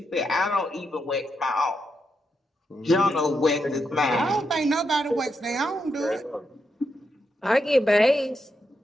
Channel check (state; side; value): normal; both; correlation 0.83